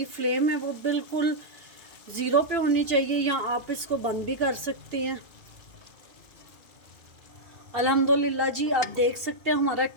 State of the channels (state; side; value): late; left; 2.8 ms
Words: फ्लेम है वो बिल्कुल ज़ीरो पे होनी चाहिए, या आप इसको बंद भी कर सकती हैं। अल्हम्दुलिल्लाह जी, आप देख सकते हैं हमारा